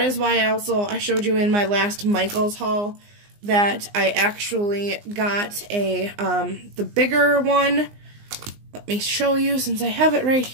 is why I showed you in my last Michael's haul that I actually got the bigger one. Let me show you since I have it right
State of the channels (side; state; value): left; late; 19 ms